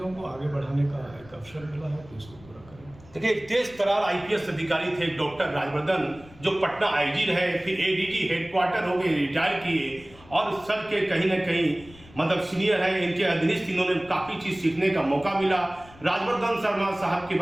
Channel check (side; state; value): left; noise; rumble, 22 dB below the sound